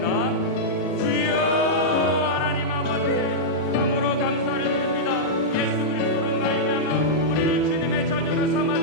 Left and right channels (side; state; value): right; late; 4.3 ms